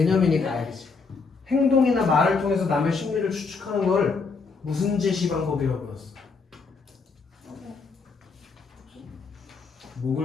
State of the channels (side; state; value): right; quieter; 4.6 dB